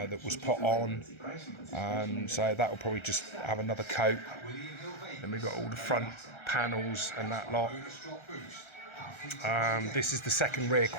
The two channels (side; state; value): right; late; 1.3 ms